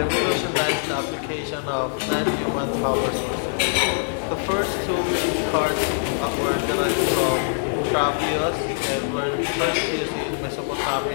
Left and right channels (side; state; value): right; silent; digital silence